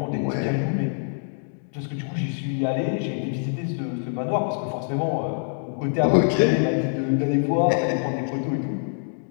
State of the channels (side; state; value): right; silent; 62 dB below the other